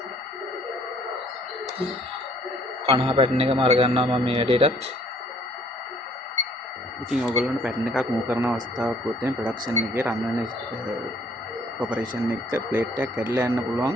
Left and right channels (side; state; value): both; normal; correlation 0.61